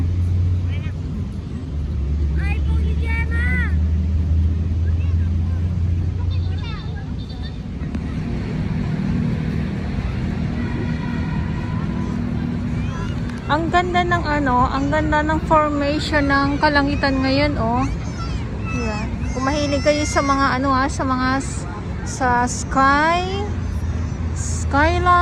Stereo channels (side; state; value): both; identical; correlation 1.00